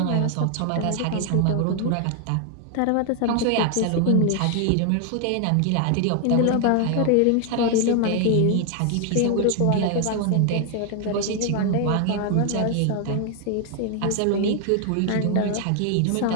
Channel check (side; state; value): both; different; correlation 0.01